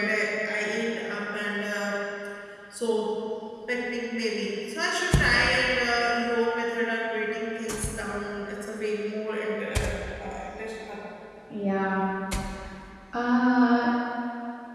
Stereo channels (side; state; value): both; identical; correlation 1.00